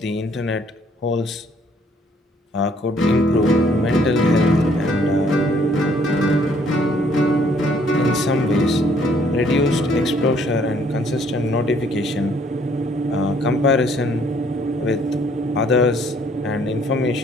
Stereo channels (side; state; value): both; normal; correlation 0.63